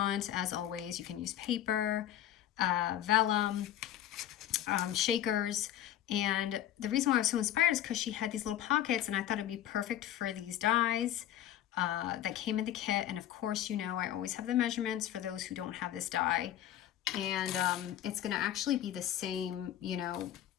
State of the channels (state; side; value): quieter; right; 11.8 dB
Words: As always, you can use paper, Vellum, shakers. And the reason why I was so inspired is because she had these little pockets, and I thought it'd be perfect for these dies that came in the kit. And of course, you know, I always have the measurements for those who don't have this die. And it's going to actually be the same, you know,